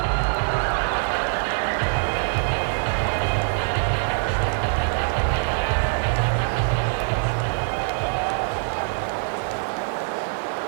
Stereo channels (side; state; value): left; silent; 63 dB below the other